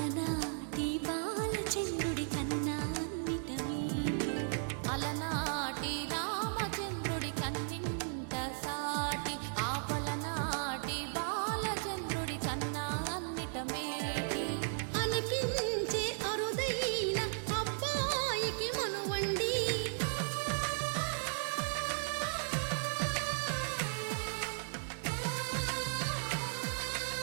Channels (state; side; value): silent; left; digital silence